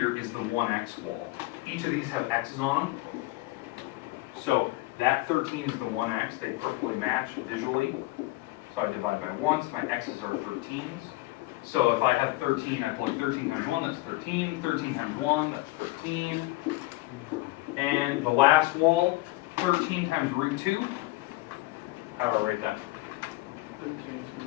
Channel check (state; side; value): quieter; right; 20.4 dB